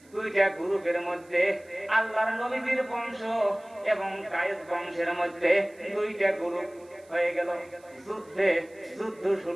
দুইটা গ্রুপের মধ্যে আল্লাহর নবীজির বংশ এবং কায়েস বংশের মধ্যে দুইটা গ্রুপ হয়ে গেল। যুদ্ধ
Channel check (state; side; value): noise; right; hiss, 29 dB below the sound